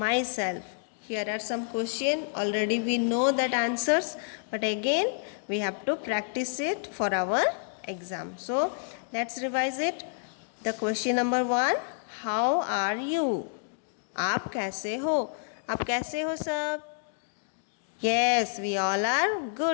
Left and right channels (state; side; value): silent; right; digital silence